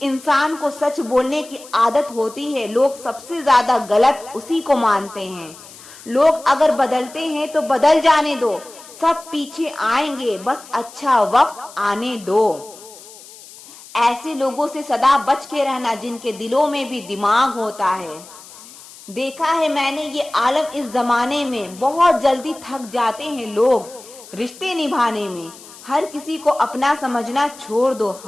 इंसान को सच बोलने की आदत होती है, लोग सबसे ज्यादा गलत उसी को मानते हैं। लोग अगर बदलते हैं तो बदल जाने दो, सब पीछे आएंगे, बस अच्छा वक्त आने दो। ऐसे लोगों से सदा बच के रहना जिनके दिलों में भी दिमाग होता है। देखा है मैंने ये आलम इस जमाने में, बहुत जल्दी थक जाते हैं लोग रिश्ते निभाने में। हर किसी को अपना समझना छोड़ दो,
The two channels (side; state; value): left; noise; hiss, 19 dB below the sound